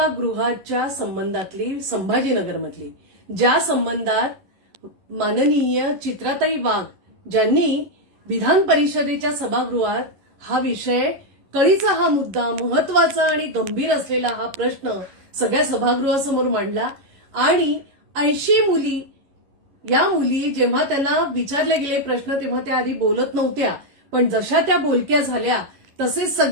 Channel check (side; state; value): left; late; 11 ms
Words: गृहाच्या संबंधातली संभाजीनगरमधली, ज्या संबंधात माननीय चित्राताई वाघ ज्यांनी विधान परिषदेच्या सभागृहात हा विषय, कळीचा हा मुद्दा, महत्वाचा आणि गंभीर असलेला हा प्रश्न सगळ्या सभागृहासमोर मांडला. आणि 80 मुली, या मुली जेव्हा त्यांना विचारले गेले प्रश्न तेव्हा त्या आधी बोलत नव्हत्या, पण जशा त्या बोलक्या झाल्या तसे